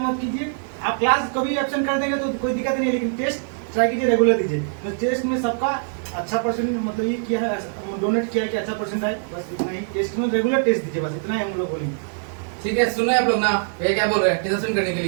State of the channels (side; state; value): left; silent; 60 dB below the other